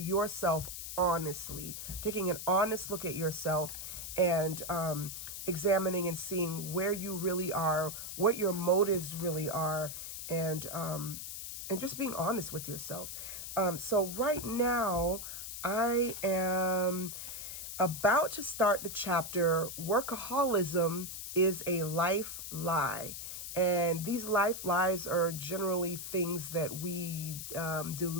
honestly, taking an honest look at yourself and examining and seeing where you really are, what your motives really are, and just being honest with yourself. So right now I am about to start the chapter, Workaholism is a Life Lie. And these life lies are generally things that we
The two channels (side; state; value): left; noise; hiss, 7 dB below the sound